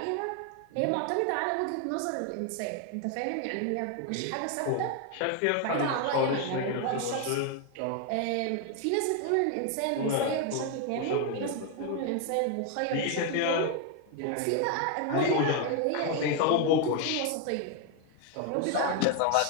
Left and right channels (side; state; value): both; different; correlation 0.01